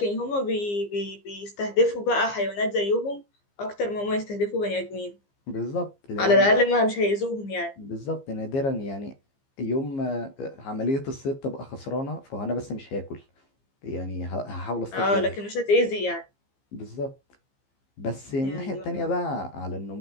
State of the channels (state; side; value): late; right; 15 ms